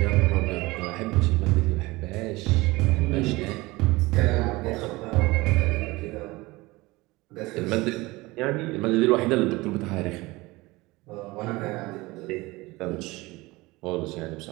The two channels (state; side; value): quieter; left; 21.4 dB